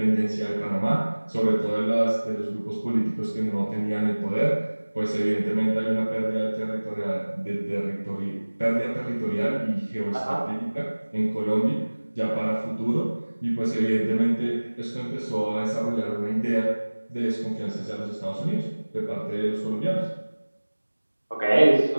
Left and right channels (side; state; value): both; inverted; correlation -1.00